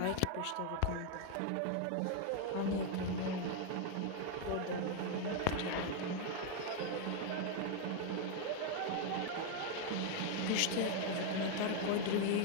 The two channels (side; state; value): both; different; correlation 0.00